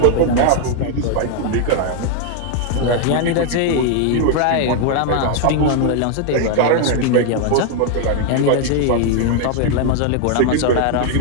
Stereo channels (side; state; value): both; different; correlation 0.00